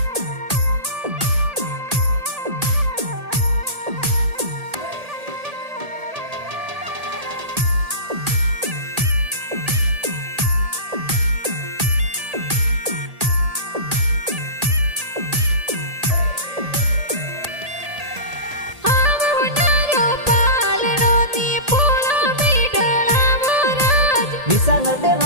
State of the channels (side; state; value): left; late; 1.8 ms